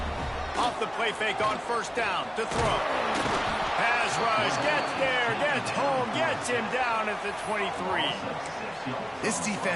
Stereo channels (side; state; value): both; identical; correlation 1.00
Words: The play fake on 1st down to throw. Pass rush, gets there, gets home, gets him down at the 23. This